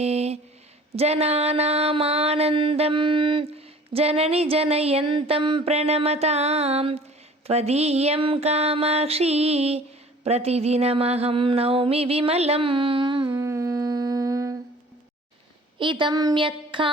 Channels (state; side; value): normal; both; correlation 0.49